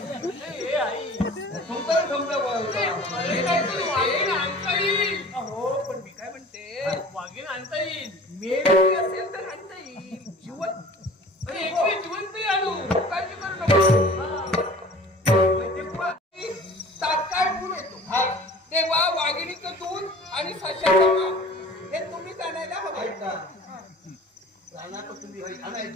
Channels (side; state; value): both; normal; correlation 0.44